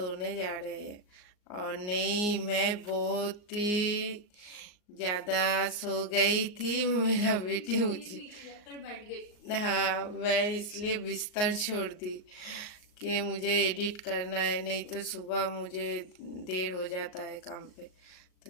जा रहे हैं। और नहीं, मैं बहुत ही ज़्यादा सो गई थी, मेरा बेटी मुझे बैठ गई। हाँ, मैं इसलिए बिस्तर छोड़ दी कि मुझे एडिट करना है, नहीं तो सुबह मुझे देर हो जाता है काम पे। तो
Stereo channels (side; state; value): right; late; 38 ms